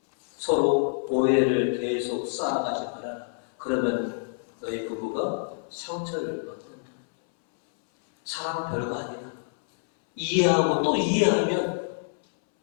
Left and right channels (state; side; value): silent; right; 60 dB below the other